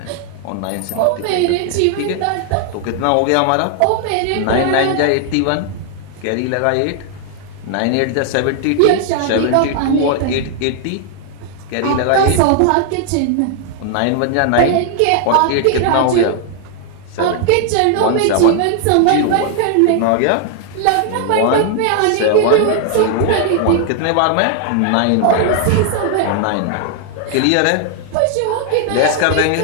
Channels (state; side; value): different; both; correlation 0.00